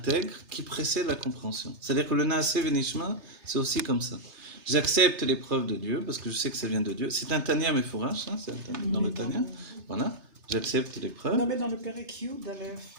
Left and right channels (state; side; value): late; left; 3.3 ms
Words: qui précède la compréhension. C'est-à-dire que le Naaseh Venishma, c'est aussi comme ça. J'accepte l'épreuve de Dieu parce que je sais que ça vient de Dieu. C'est un Tanya Mefourash, c'est dans le Tanya. Voilà, j'accepte l'épreuve. Non, mais dans le Pérek Yud, d'Aleph,